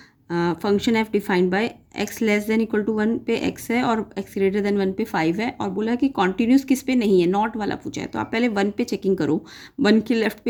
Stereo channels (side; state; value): both; identical; correlation 1.00